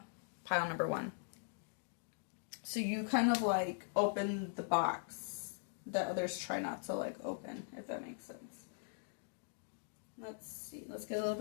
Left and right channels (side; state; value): right; silent; digital silence